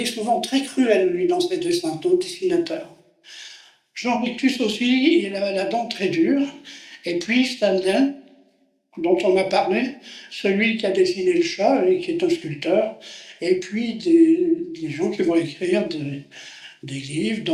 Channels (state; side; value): identical; both; correlation 1.00